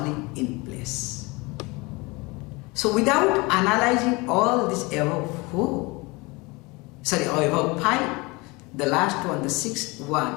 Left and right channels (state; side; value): quieter; right; 25.3 dB